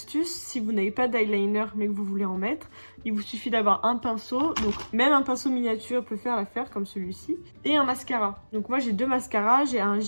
si vous n'avez pas d'eyeliner mais que vous voulez en mettre, il vous suffit d'avoir un pinceau, donc même un pinceau miniature peut faire l'affaire comme celui-ci, et un mascara. Donc moi j'ai deux mascaras, j'ai un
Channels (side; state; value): both; inverted; correlation -1.00